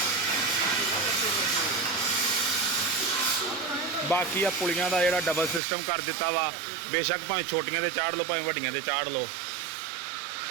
बाकी आ पुलियां का जोड़ा डबल सिस्टम कर दिता वा, बेशक भावें छोटियां ते चाढ़ लो भावें वड्डियां ते चाढ़ लो।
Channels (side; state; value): left; drops out; at 5.6 s